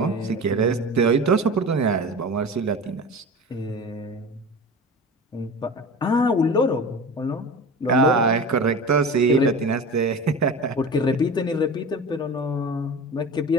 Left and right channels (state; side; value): normal; both; correlation 0.32